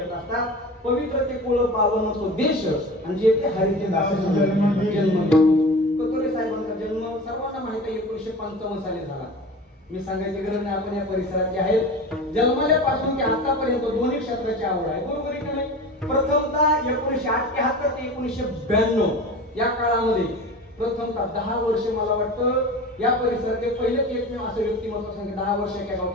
असतात. पवित्र ते कुळ पावन तो देश आणि जे ते हरीचे दास जन्म कतोरे साहेबांचा जन्म सर्वांना माहिती आहे 1955 साली झाला. मी सांगायची गरज नाही, आपण या परिसरात जे आहेत जन्मल्यापासून ते आतापर्यंत दोन्ही क्षेत्राची आवड आहे. बरोबर आहे की नाही? प्रथमतः 1978 ते 1992 या काळामध्ये प्रथमतः 10 वर्ष मला वाटतं या परिसराचे पहिलेच एकमेव असं व्यक्तिमत्व सांगितलं 10 वर्ष एका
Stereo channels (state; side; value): normal; both; correlation 0.34